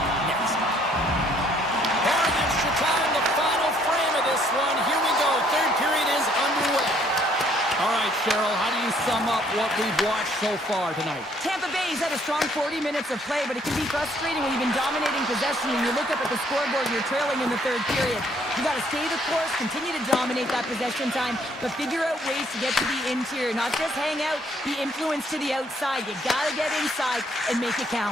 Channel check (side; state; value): both; normal; correlation 0.65